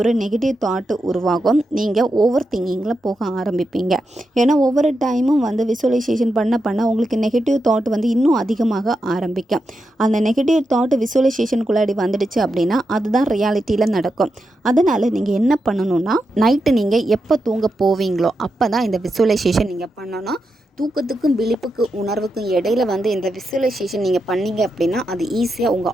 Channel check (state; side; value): normal; both; correlation 0.86